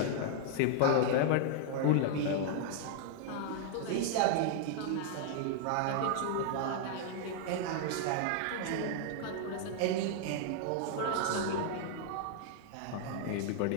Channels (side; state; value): both; different; correlation 0.00